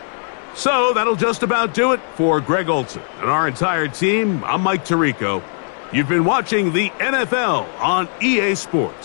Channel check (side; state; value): right; silent; 61 dB below the other